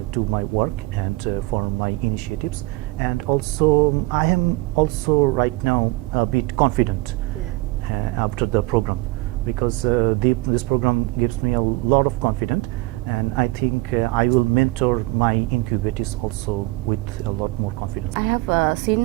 to my work and for my initiatives. And also, I am also right now a bit confident after the program, because this program gives me a lot of confidence, and I think I will mentor my incubators also with a lot more confidence. I have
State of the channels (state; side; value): quieter; left; 21.2 dB